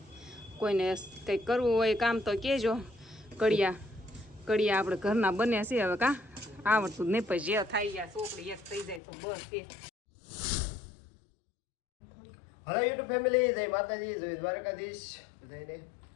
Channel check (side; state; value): right; drops out; at 9.0 s